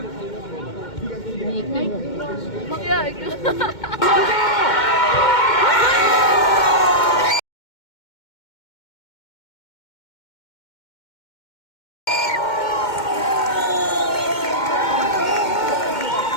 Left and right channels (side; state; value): right; late; 2.2 ms